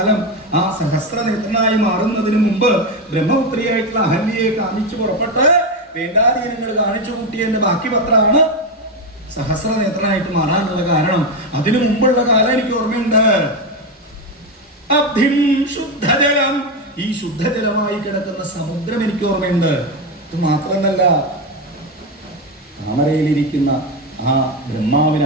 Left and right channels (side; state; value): both; normal; correlation 0.12